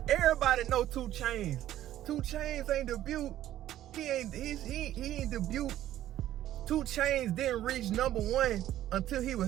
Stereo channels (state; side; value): quieter; left; 12.9 dB